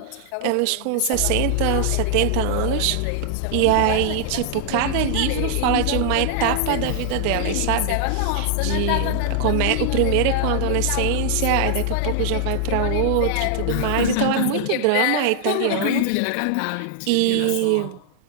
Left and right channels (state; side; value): different; both; correlation -0.01